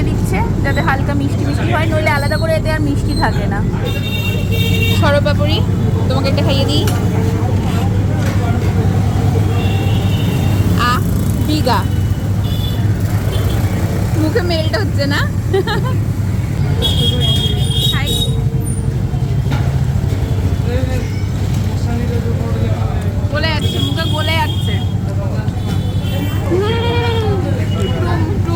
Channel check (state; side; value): identical; both; correlation 1.00